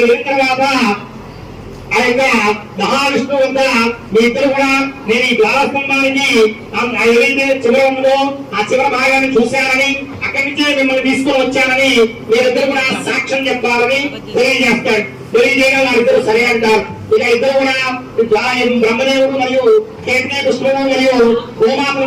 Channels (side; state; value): both; identical; correlation 1.00